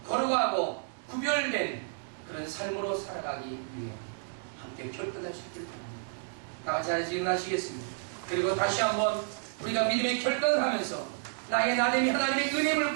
거룩하고 구별된 그런 삶으로 살아가기 위해 함께 결단하시길 바랍니다. 다 같이 하나씩 일어나시겠습니다. 그리고 다시 한번 우리가 믿음의 결단을 하면서 나의 나됨이 하나님의 은혜를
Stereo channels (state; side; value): silent; left; digital silence